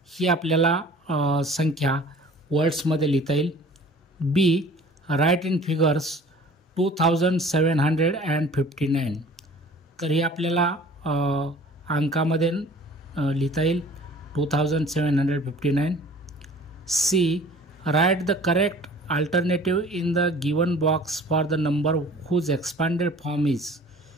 ही आपल्याला संख्या वर्ड्समध्ये लिहिता येईल. B, write in figures 2759. तर ही आपल्याला अंकामध्ये लिहिता येईल 2759. C, write the correct alternative in the given box for the number whose expanded form is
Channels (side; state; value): both; normal; correlation 0.47